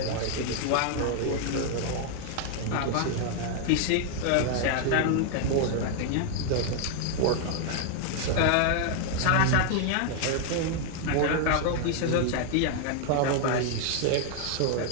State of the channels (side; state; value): both; different; correlation 0.00